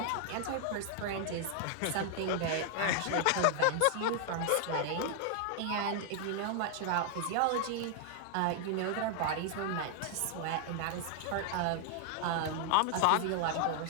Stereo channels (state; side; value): different; both; correlation 0.00